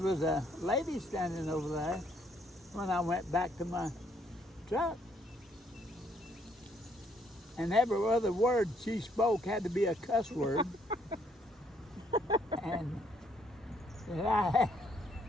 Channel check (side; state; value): both; normal; correlation 0.68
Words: a lady standing over there when I went back to my truck. And every other word she spoke had to be a cuss word. And I